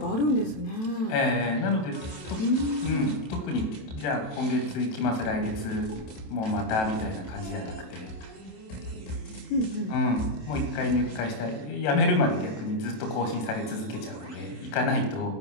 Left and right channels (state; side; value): late; right; 27 ms